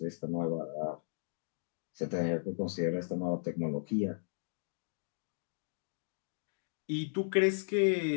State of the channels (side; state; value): right; silent; digital silence